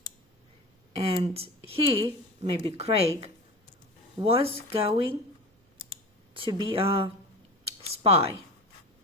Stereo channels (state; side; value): normal; both; correlation 0.32